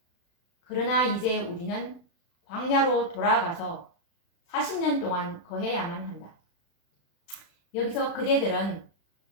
그러나 이제 우리는 광야로 돌아가서 40년 동안 거해야만 한다. 여기서 그대들은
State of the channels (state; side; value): late; right; 35 ms